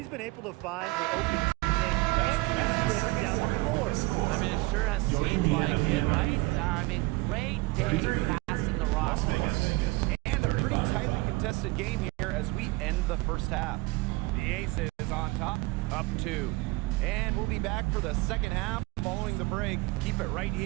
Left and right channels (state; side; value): quieter; left; 22.5 dB